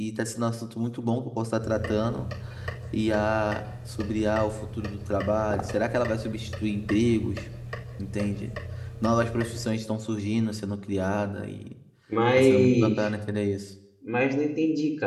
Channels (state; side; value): identical; both; correlation 1.00